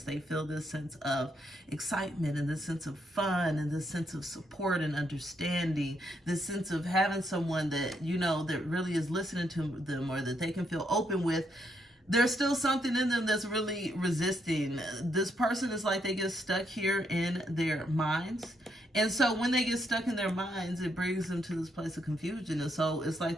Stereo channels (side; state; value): both; normal; correlation 0.76